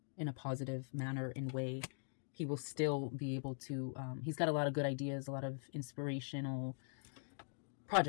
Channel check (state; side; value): silent; right; digital silence